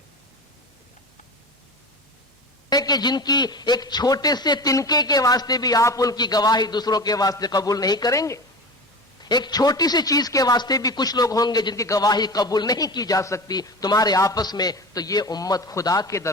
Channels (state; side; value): normal; both; correlation 0.31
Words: کہ جن کی ایک چھوٹے سے تنکے کے واسطے بھی آپ ان کی گواہی دوسروں کے واسطے قبول نہیں کریں گے۔ ایک چھوٹی سی چیز کے واسطے بھی کچھ لوگ ہوں گے جن کی گواہی قبول نہیں کی جا سکتی تمہارے آپس میں، تو یہ امت خدا کے